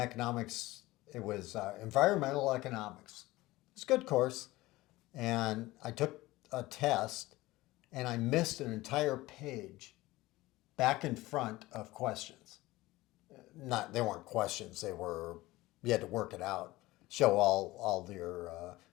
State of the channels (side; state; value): right; quieter; 18.9 dB